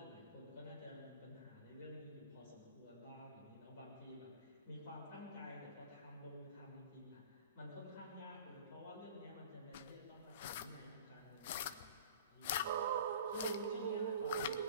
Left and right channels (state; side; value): inverted; both; correlation -0.42